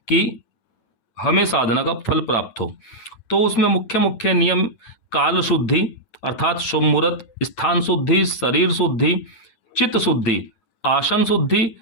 कि हमें साधना का फल प्राप्त हो। तो उसमें मुख्य मुख्य नियम काल शुद्धि अर्थात शुभ मुहूर्त, स्थान शुद्धि, शरीर शुद्धि, चित्त शुद्धि, आसन शुद्धि,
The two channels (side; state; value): right; late; 9.3 ms